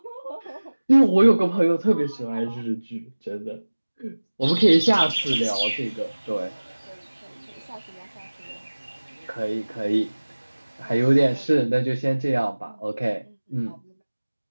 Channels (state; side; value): inverted; both; correlation -1.00